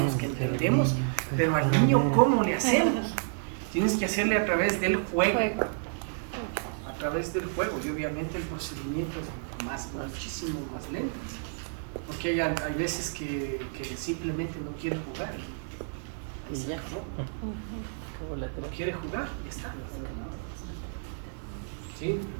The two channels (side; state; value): left; silent; 58 dB below the other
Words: que entendemos, pero al niño ¿cómo le hacemos? Tienes que hacerle a través del juego. A través del juego, y obviamente el procedimiento es muchísimo más lento, porque hay veces que simplemente no quiere jugar y se acabó. No quiere jugar y ya está. Sí,